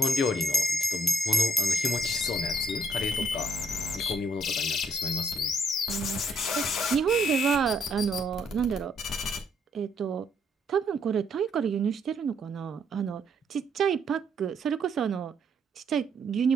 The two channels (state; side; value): normal; both; correlation 0.71